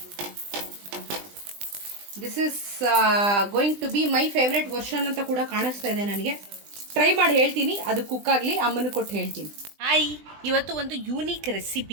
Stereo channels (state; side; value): late; left; 20 ms